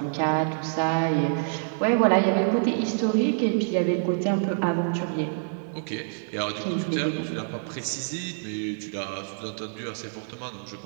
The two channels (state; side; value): silent; left; digital silence